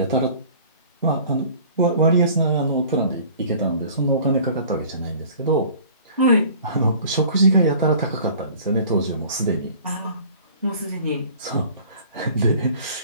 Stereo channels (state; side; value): inverted; both; correlation -0.48